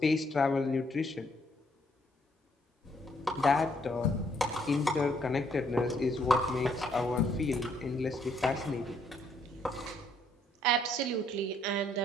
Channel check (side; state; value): both; normal; correlation 0.69